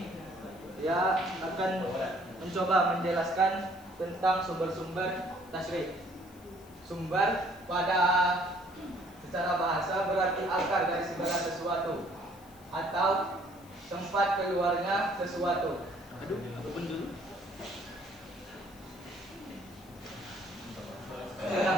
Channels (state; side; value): noise; left; hiss, 25 dB below the sound